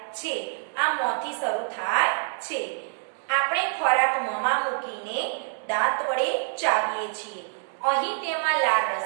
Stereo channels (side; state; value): left; silent; digital silence